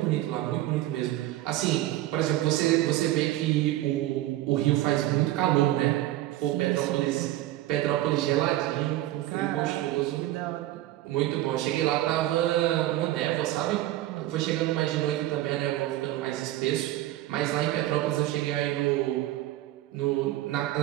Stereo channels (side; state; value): left; quieter; 15.1 dB